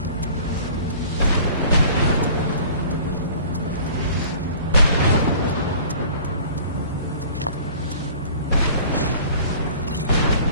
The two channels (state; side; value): inverted; both; correlation -0.48